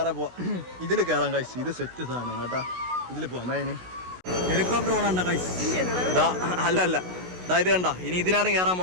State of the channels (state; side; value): late; left; 16 ms